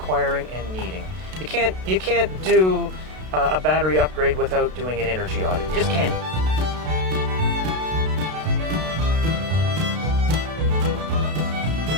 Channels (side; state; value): left; late; 32 ms